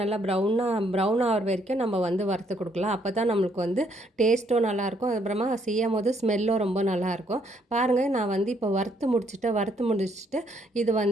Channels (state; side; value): normal; both; correlation 0.70